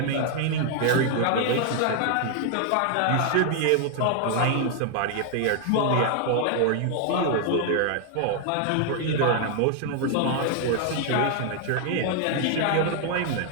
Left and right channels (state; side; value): different; both; correlation 0.00